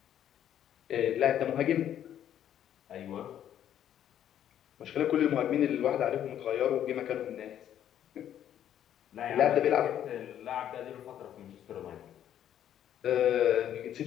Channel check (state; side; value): quieter; right; 10.5 dB